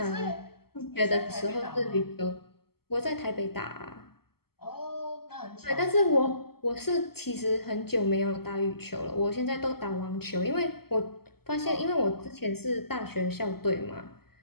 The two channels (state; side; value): late; right; 0.95 ms